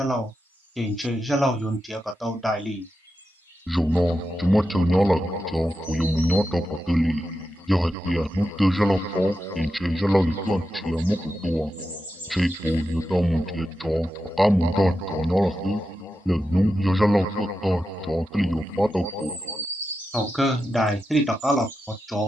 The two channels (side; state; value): both; normal; correlation 0.89